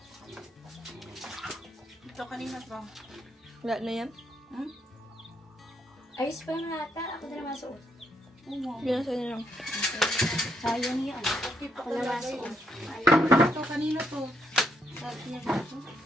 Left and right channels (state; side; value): normal; both; correlation 0.75